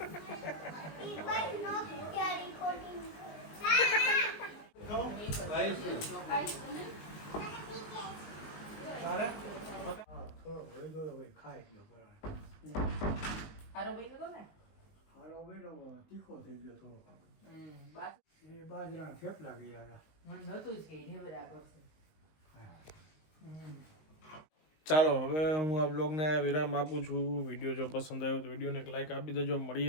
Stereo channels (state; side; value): late; right; 19 ms